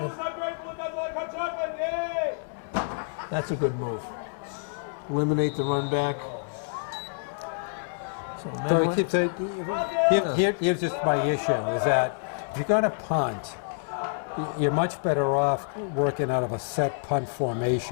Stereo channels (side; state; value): right; silent; 60 dB below the other